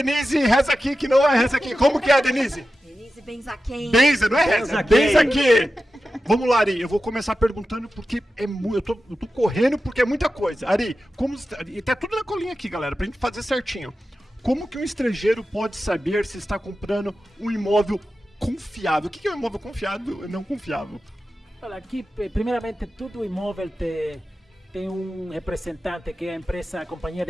Reza aqui, que não é Reza aqui. Como que é, Denise? Denise Benzaquem. Benza, não é Reza, Benza aqui. Vamos lá, Ari, eu vou começar perguntando porque é muito, eu tô correndo porque é muita coisa. Ari, e tá tudo na colinha aqui, galera, pra gente fazer certinho. Como que um estrangeiro pode saber se está comprando um imóvel confiável? O que é um imóvel confiável e não confiável? Olha, aqui, primeiramente, todo imóvel tem um representante que é a empresa, a companhia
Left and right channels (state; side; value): normal; both; correlation 0.93